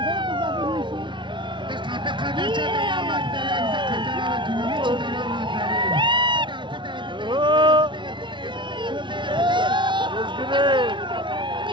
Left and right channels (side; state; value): left; late; 0.24 ms